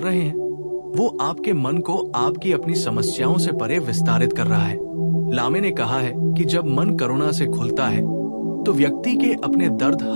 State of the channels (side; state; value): both; inverted; correlation -1.00